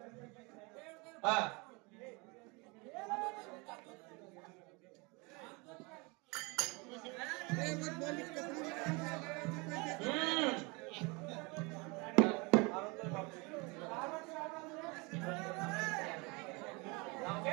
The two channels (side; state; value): left; quieter; 28.1 dB